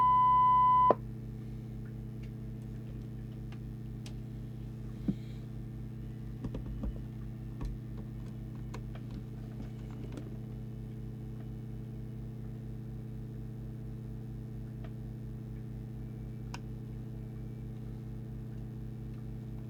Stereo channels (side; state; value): both; identical; correlation 1.00